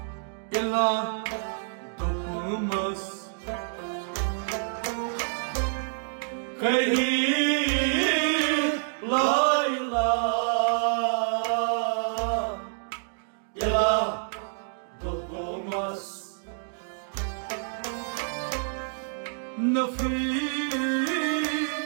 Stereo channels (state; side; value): silent; left; digital silence